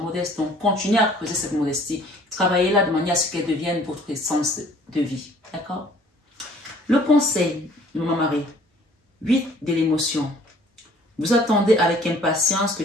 Donc, continuez à creuser cette modestie. Travaillez là de manière à ce qu'elle devienne votre essence de vie. D'accord? Le conseil de mon mari, 8 de l'émotion. Vous attendez avec impatience que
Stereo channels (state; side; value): normal; both; correlation 0.55